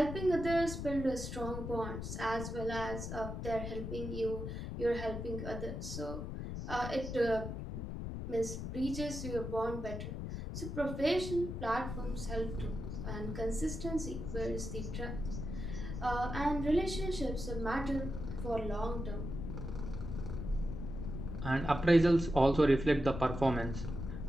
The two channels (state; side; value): noise; left; rumble, 5 dB below the sound